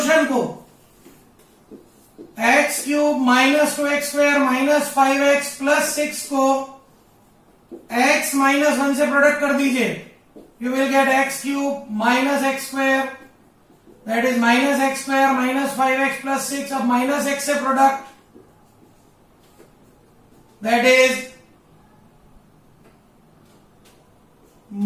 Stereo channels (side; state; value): both; identical; correlation 1.00